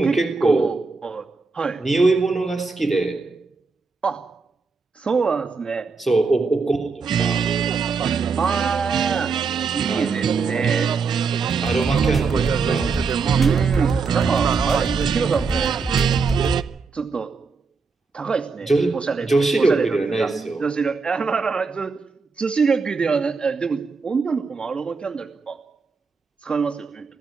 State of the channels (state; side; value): quieter; left; 4.7 dB